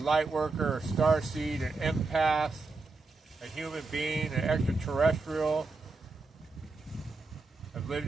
worker, a starseed, an empath, a human being, an extraterrestrial. I've lived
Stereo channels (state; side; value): quieter; left; 3.7 dB